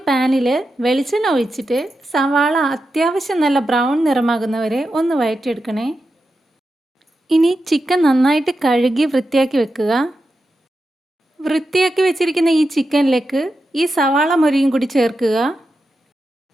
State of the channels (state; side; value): normal; both; correlation 0.89